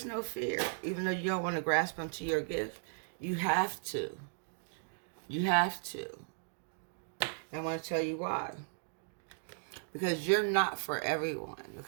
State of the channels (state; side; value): silent; left; digital silence